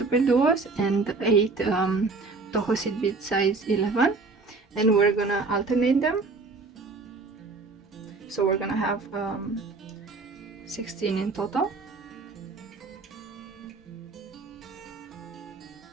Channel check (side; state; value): left; quieter; 3.9 dB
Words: and 8 Toho seed bead size 11, and we're gonna alternate them. So we're gonna have 16 in total.